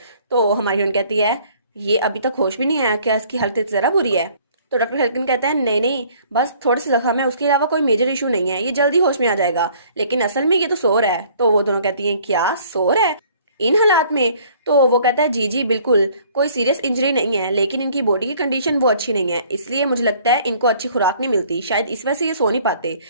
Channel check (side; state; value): both; inverted; correlation -0.57